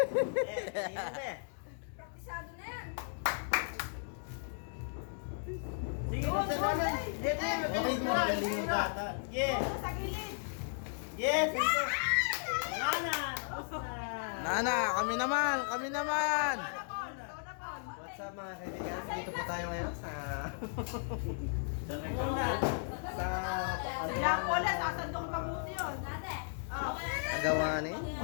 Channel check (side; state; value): right; silent; digital silence